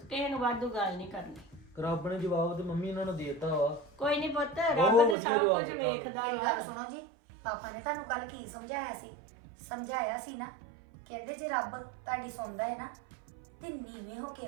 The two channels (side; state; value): left; drops out; at 5.2 s